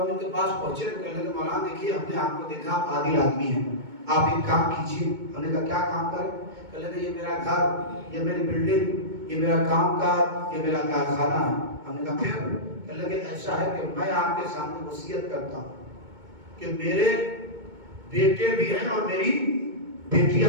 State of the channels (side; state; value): left; late; 2.2 ms